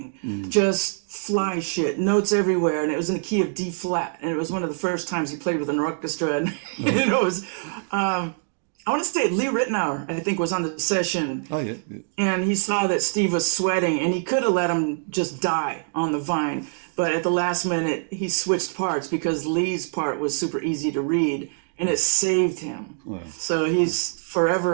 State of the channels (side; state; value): left; silent; digital silence